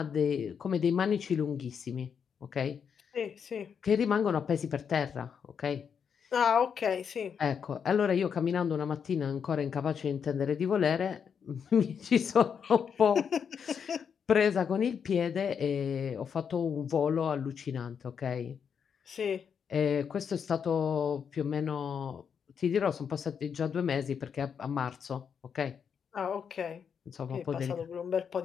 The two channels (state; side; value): quieter; right; 7.0 dB